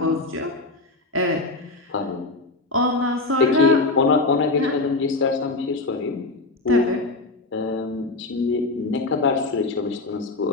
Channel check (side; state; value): right; quieter; 3.3 dB